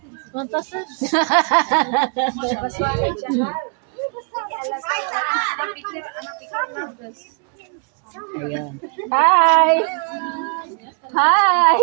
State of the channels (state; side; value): quieter; left; 38.3 dB